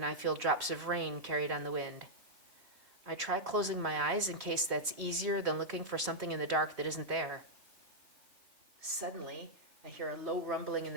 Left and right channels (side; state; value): left; late; 3.4 ms